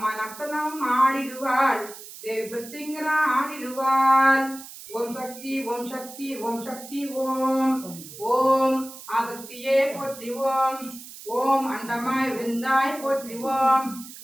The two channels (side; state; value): right; noise; hiss, 15 dB below the sound